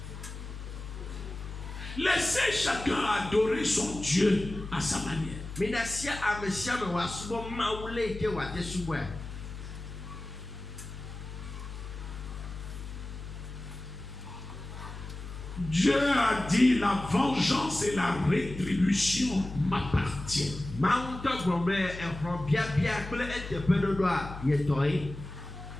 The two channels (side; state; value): left; noise; hum, 10 dB below the sound